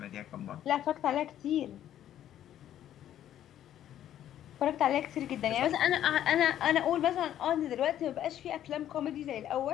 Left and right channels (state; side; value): quieter; right; 11.4 dB